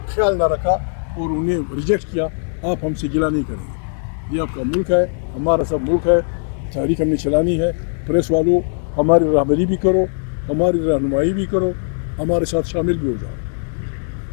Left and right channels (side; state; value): right; silent; digital silence